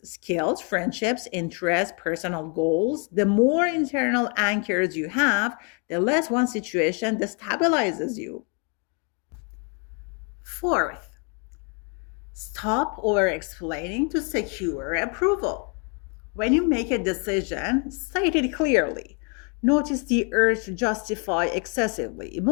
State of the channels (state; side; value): quieter; right; 37.1 dB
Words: skills, friendships, interests, personal goals. The more internal anchors you have, the less one situation destabilizes you. Fourth, stop over explaining to secure approval. When you make a decision, state it clearly. Notice the urge to justify excessively.